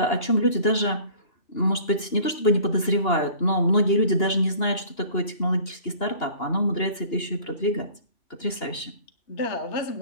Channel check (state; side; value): late; right; 2.8 ms